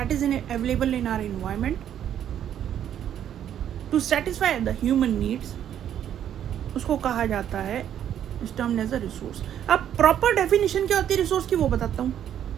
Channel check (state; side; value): quieter; left; 10.1 dB